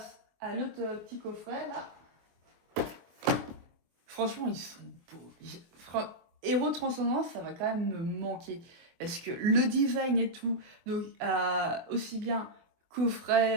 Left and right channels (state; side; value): late; left; 24 ms